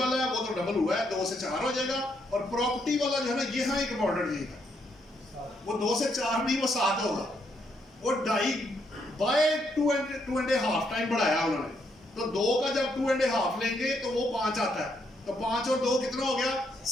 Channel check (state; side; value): normal; both; correlation 0.76